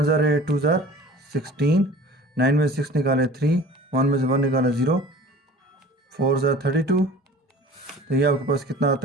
ज़ार 8 2 ज़ार 16। 9 में 6 निकाले 3, 1 में से 1 निकाला 0, 4 ज़ार 32। तो ये आपके पास कितना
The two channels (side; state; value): both; normal; correlation 0.43